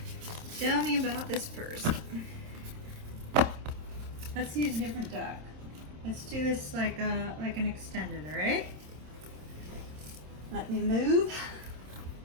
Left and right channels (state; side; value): late; left; 26 ms